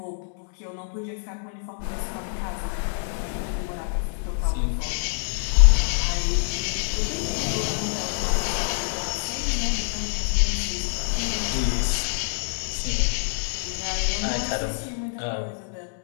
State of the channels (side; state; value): right; silent; 61 dB below the other